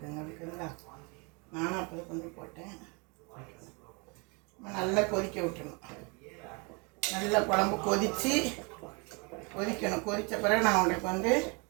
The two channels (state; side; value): quieter; left; 31.6 dB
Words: ஓகேங்களா? நானும் அப்போ தான் கொஞ்சம் போட்டேன். நம்ம நல்லா கொதிக்க விட்டுணும். நல்லா குழம்பு கொதிக்கணும். கொதித்த பிறகு நான் உங்களுக்கு வந்து